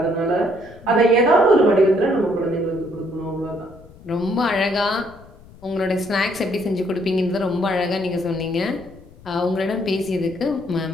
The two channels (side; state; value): left; noise; rumble, 22 dB below the sound